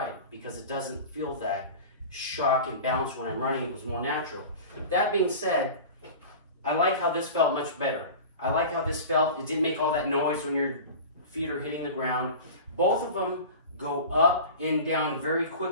because it doesn't feel that shock and bounce when I'm running. It was more natural. That being said, I like how this felt much better. I like how this felt. It didn't make all that noise when your feet are hitting the ground. Both of them go up and down very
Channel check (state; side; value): inverted; both; correlation -0.34